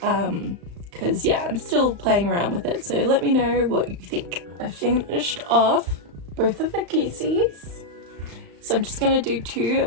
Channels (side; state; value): left; late; 35 ms